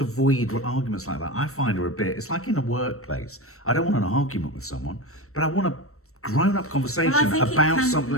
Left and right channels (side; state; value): right; late; 0.63 ms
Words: avoid arguments like that, I find are a bit, it's like in a workplace. I don't want an argument with someone, but I want a grown-up conversation about